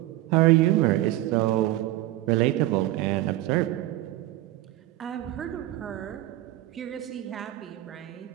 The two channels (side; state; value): left; quieter; 15.9 dB